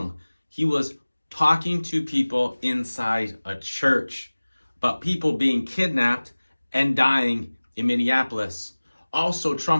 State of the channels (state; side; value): inverted; both; correlation -1.00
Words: He was talking to people inside a church about people being kidnapped and dying in Minneapolis. Also,